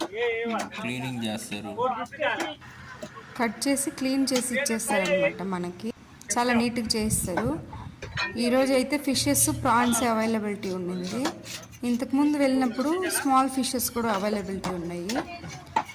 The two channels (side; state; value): both; identical; correlation 1.00